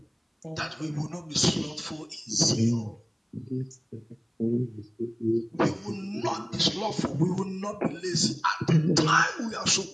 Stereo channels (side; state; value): both; identical; correlation 1.00